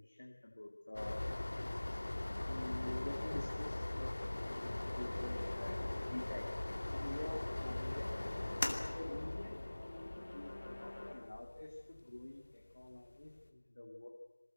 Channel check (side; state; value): both; inverted; correlation -1.00